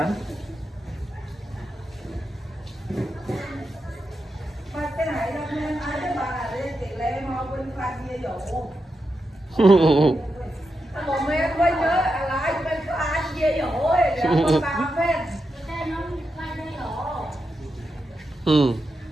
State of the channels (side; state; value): both; normal; correlation 0.87